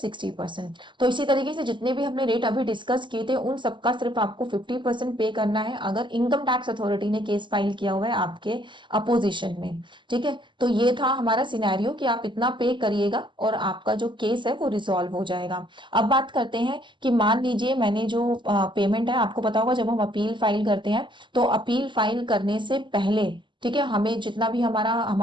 तो इसी तरीके से जितने भी हमने रेट अभी डिस्कस किए थे उन सबका सिर्फ आपको 50% पे करना है अगर इनकम टैक्स अथॉरिटी ने केस फाइल किया हुआ है आपके अपोजिशन में। ठीक है, तो ये था हमारा सिनेरियो कि आप इतना पे करिएगा और आपका जो केस है वो रिजॉल्व हो जाएगा। अब बात करते हैं कि मान लीजिए मैंने जो पेमेंट है, आपको पता होगा जब हम अपील फाइल करते हैं तो अपील फाइल करने से पहले, ठीक है, हमें जितना भी हमारा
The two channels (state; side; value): late; left; 0.23 ms